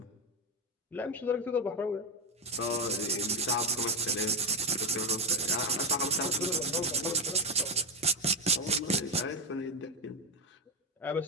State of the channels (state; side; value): normal; both; correlation 0.09